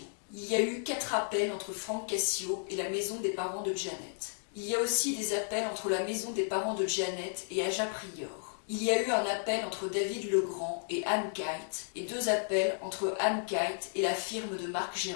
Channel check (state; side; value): silent; right; digital silence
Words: Il y a eu 4 appels entre Frank Cassio et la maison des parents de Janet. Il y a aussi des appels entre la maison des parents de Janet et Aja Prior. Il y a eu un appel entre David Legrand et Anne Kite et 2 appels entre Anne Kite et la firme de Marc